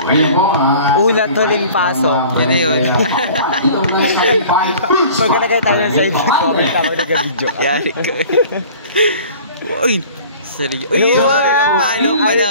po, Ulat huling pasok. Yun na yun. Pag nagkaya tayo sa side, comment ako nag-video. Yari ka. Uy! Seryo. Uy! Ang palo pa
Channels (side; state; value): both; inverted; correlation -0.46